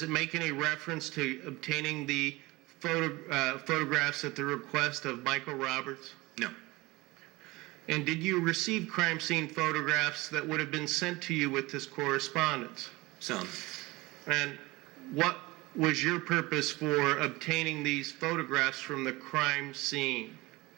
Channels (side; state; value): left; quieter; 21.8 dB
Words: it make any reference to obtaining the photographs at the request of Michael Roberts? No. And did you receive crime scene photographs that would have been sent to you with this correspondence? Some. And what was your purpose for obtaining these photographs from the crime scene?